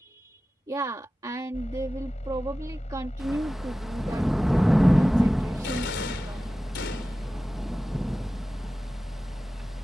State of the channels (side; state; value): both; normal; correlation 0.95